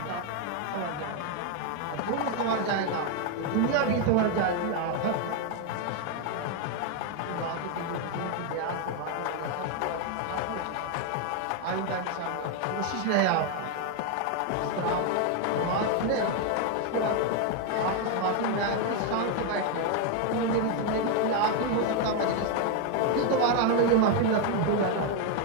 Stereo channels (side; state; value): both; different; correlation 0.01